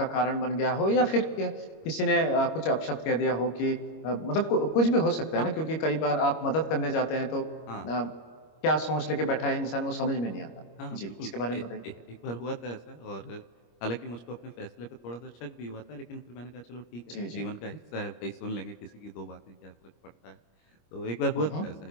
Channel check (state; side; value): late; right; 25 ms